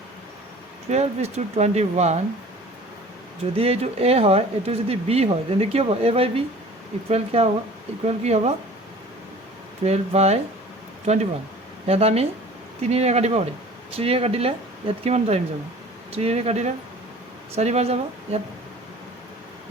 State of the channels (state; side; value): normal; both; correlation 0.45